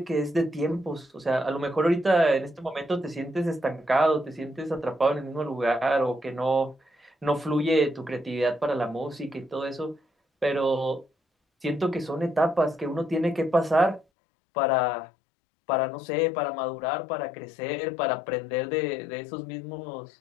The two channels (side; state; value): right; drops out; at 14.1 s